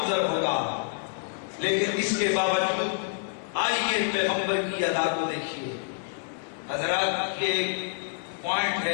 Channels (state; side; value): silent; right; 57 dB below the other